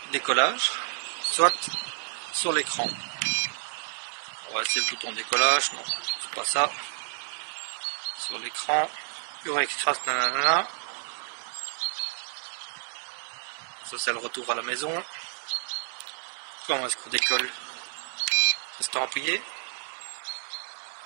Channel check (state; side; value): silent; left; 58 dB below the other